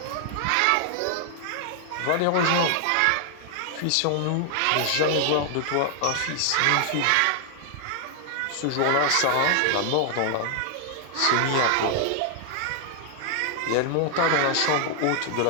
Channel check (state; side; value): different; both; correlation 0.00